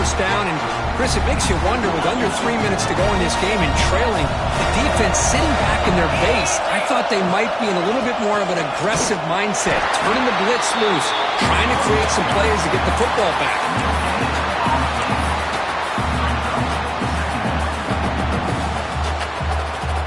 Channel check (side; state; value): both; identical; correlation 1.00